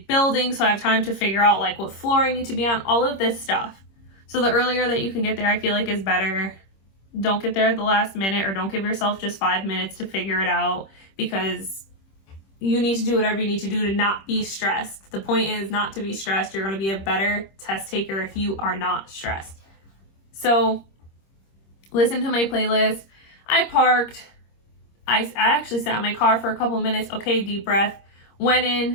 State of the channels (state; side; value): late; right; 26 ms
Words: building, so I have time to figure out like what floor I need to be on, all of this stuff. So the earlier that you can get there, I feel like is better. Don't get there at the last minute, or don't give yourself just 5 minutes to figure it out, because you need to do whatever you need to do to not be stressed. The point is not to be stressed. You're going to be a better test taker if you are not stressed. So listen to my playlist. I parked. I actually sat in my car for a couple minutes. Okay, deep breath. Went